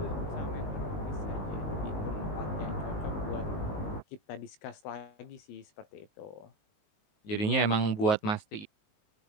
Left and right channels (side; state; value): right; late; 19 ms